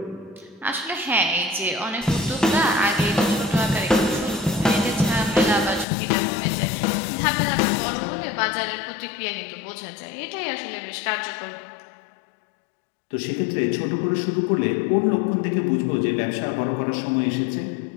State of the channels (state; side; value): drops out; right; at 5.9 s